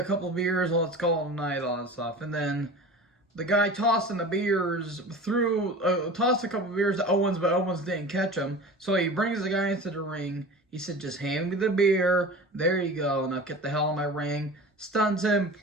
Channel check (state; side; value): normal; both; correlation 0.36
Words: couple of beers, let's call it a night," all that stuff. And then the guy tossing the beers tossed a couple of beers to Owens, but Owens didn't catch them. So he brings the guy into the ring. He said, "Just hand me the beer. There you go. Now get the hell out of my ring." Stuns him,